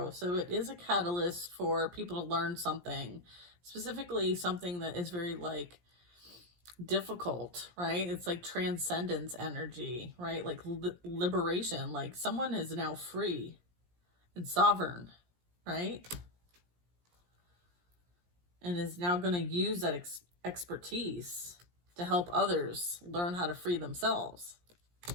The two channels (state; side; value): late; left; 17 ms